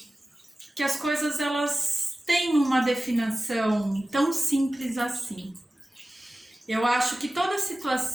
que as coisas elas têm uma definição tão simples assim. Eu acho que toda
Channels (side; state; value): both; normal; correlation 0.96